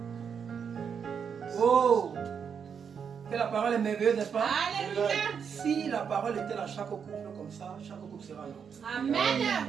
Oh! Que la parole est merveilleuse, n'est-ce pas? Alléluia. Si la parole était dans chaque couple comme ça, chaque couple sera là. Amen.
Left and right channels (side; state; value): left; quieter; 6.9 dB